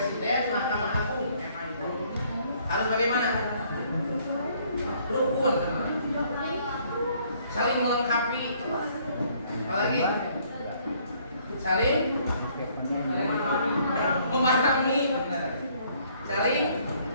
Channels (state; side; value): inverted; both; correlation -0.64